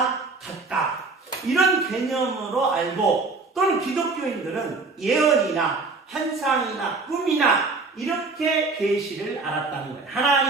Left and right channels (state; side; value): quieter; left; 3.9 dB